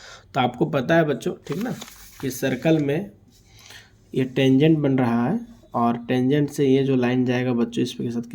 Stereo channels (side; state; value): both; identical; correlation 1.00